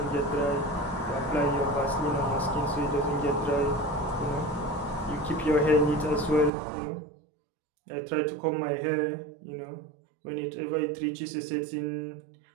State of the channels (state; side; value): drops out; left; at 6.5 s